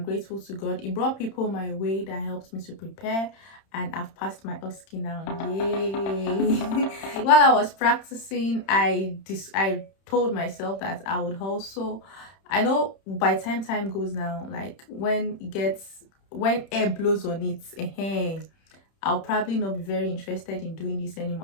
to God, He brought people my way that helped me to prepare, and I've passed my OSCE now. Yay! While I was practicing, I told myself that I would also, I know by time goes now, like when air blows on it, I'll probably not be very interested in doing this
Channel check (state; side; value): late; right; 31 ms